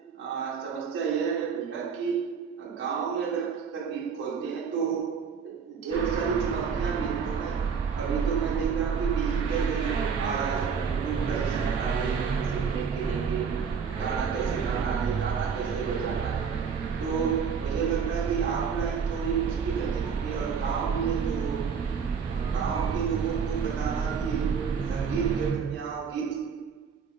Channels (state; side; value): quieter; left; 6.3 dB